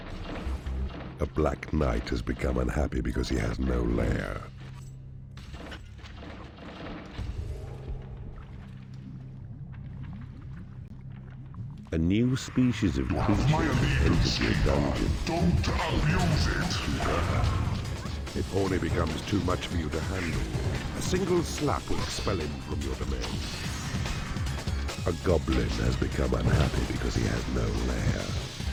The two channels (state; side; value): identical; both; correlation 1.00